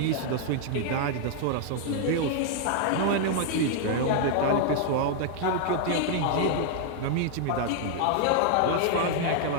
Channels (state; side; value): different; both; correlation 0.00